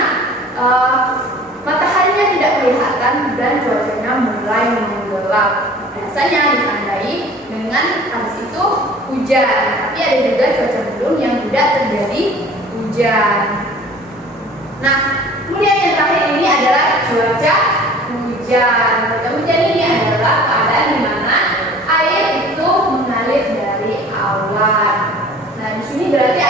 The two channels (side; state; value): both; normal; correlation 0.47